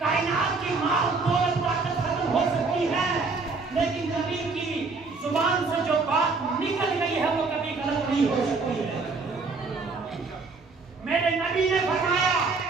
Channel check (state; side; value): quieter; left; 4.1 dB